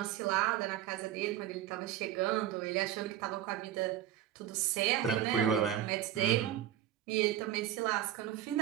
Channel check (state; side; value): quieter; left; 11.7 dB